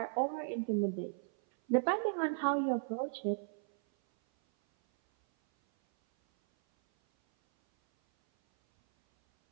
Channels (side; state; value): left; silent; 54 dB below the other